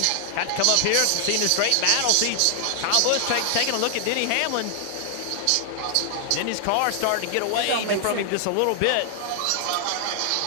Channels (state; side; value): different; both; correlation 0.00